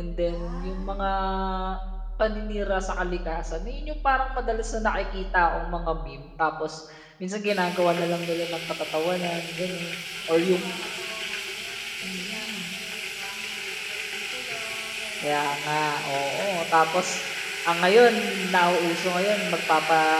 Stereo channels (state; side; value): identical; both; correlation 1.00